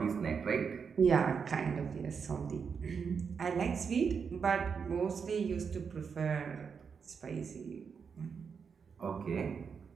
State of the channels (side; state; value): left; quieter; 6.1 dB